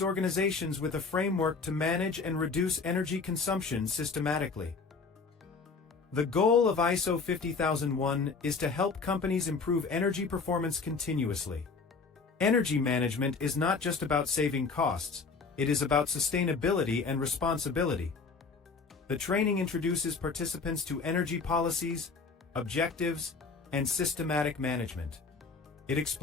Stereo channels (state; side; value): quieter; right; 4.6 dB